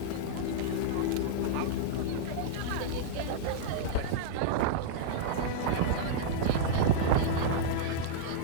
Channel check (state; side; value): different; both; correlation -0.02